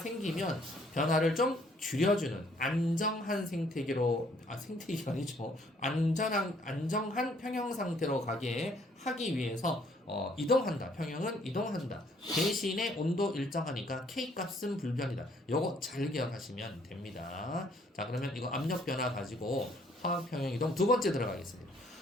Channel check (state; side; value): normal; both; correlation 0.64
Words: 변화를 좀 줄여주는 안정한 생태계가 아니죠. 안정한 평형 상태로 가게 하기 위해서 이동한다. 평형은 이동한다. 대신에 온도 일정하니까 K 값은 불변이다. 요거 잘 기억하시면 됩니다. 자, 그러면 이거 압력 변화 가지고 화학 평형 이동 두 번째 들어가겠습니다.